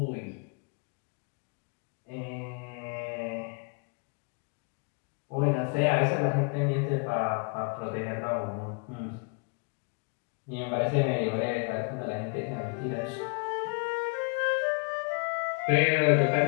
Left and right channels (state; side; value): quieter; right; 34.3 dB